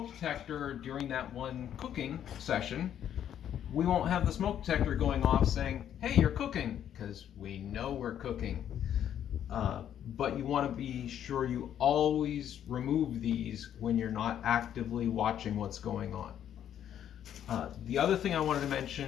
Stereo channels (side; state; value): right; quieter; 10.0 dB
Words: detector during that one cooking session, we won't have the smoke detector going off saying, hey, you're cooking, because we know we're cooking. But you want to be sure you always remove these when you're not actively watching what's going on. The other thing I wanted to